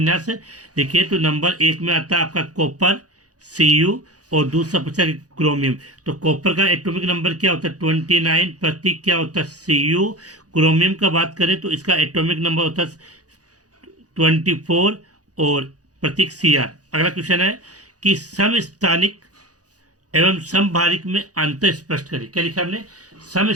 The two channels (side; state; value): left; late; 0.67 ms